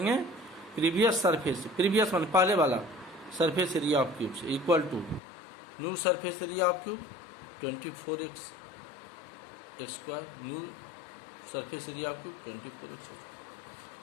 प्रीवियस सरफेस, प्रीवियस मान पहले वाला सरफेस एरिया ऑफ क्यूब से, equal to new surface area of cube 24x square, new surface area of cube 24x square.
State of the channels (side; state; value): right; drops out; at 5.2 s